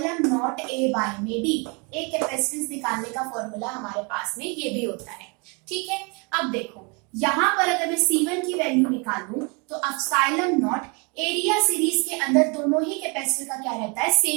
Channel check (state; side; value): quieter; left; 31.7 dB